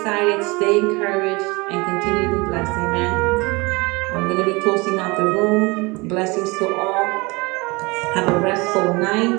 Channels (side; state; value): left; quieter; 25.6 dB